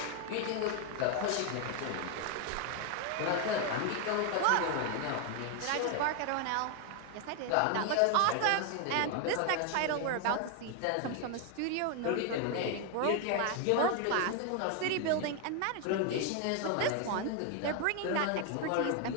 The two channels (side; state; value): both; different; correlation 0.01